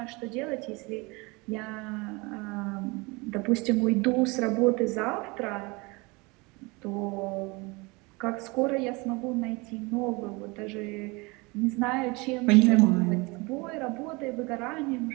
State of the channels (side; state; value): left; quieter; 26.3 dB